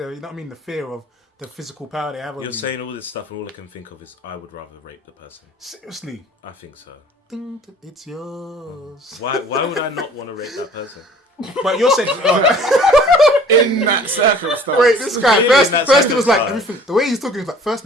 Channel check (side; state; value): both; normal; correlation 0.50